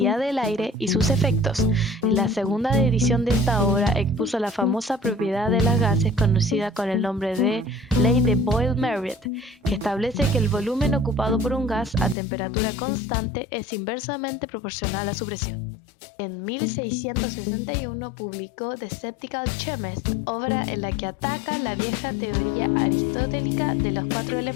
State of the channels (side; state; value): right; drops out; at 12.2 s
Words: del aire y sus efectos. En la segunda edición de esta obra expuso la famosa propiedad de los gases conocida con el nombre de Ley de Boyle-Marriott, que establece que el volumen ocupado por un gas a temperatura constante es inversamente proporcional a su presión. En 1661 publicó The Skeptical Chemist, obra en la que ataca la vieja teoría aristotélica de los 4